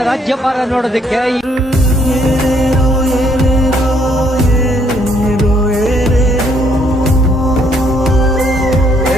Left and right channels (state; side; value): normal; both; correlation 0.68